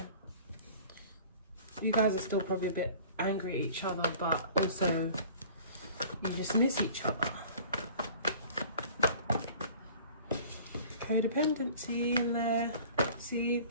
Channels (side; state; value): both; inverted; correlation -0.47